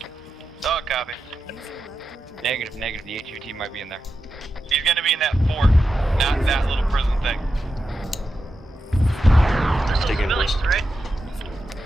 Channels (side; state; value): both; normal; correlation 0.89